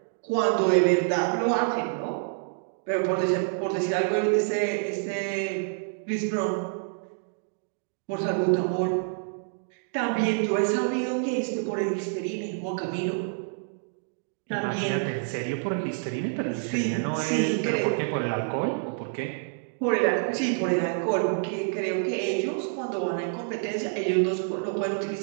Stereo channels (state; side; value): silent; left; digital silence